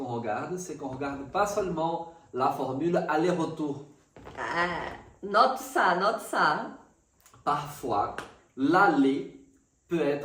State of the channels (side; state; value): both; identical; correlation 1.00